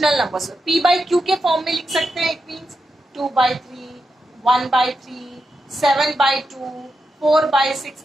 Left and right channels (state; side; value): normal; both; correlation 0.87